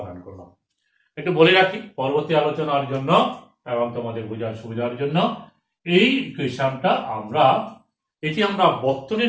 করলাম। একটু বলে রাখি পরবর্তী আলোচনার জন্য এবং তোমাদের বোঝার সুবিধার জন্য, এই ইকুয়েশনটা এটি আমরা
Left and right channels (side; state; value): both; identical; correlation 1.00